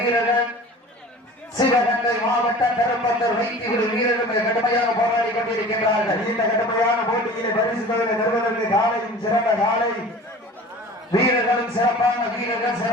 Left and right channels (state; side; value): normal; both; correlation 0.41